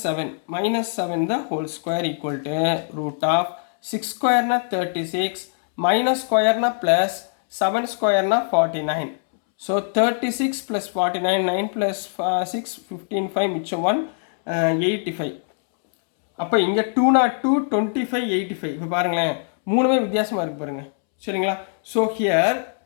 7 the whole square equal to root of 6 square na 36 minus square na plus 7 square na 49. So 36 plus 49, 9 plus 6, 15, 5, மிச்சம் 1, 85. அப்போ இங்கே 202, 25, 85. இப்போ பாருங்களேன், மூணுமே வித்தியாசமாக இருக்குது பாருங்கள். சரிங்களா, ஸோ ஹியர்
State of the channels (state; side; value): silent; right; 64 dB below the other